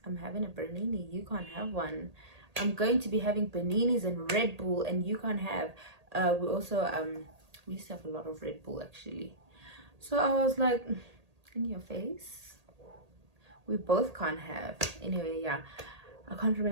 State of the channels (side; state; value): left; late; 1.8 ms